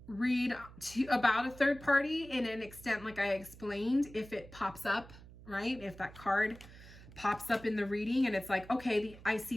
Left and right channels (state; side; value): noise; right; hum, 19 dB below the sound